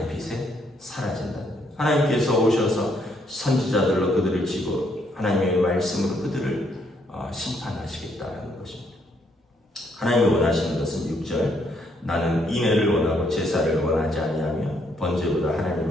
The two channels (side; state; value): both; normal; correlation 0.72